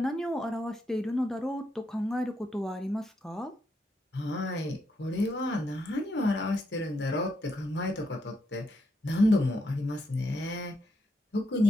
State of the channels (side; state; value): both; normal; correlation 0.79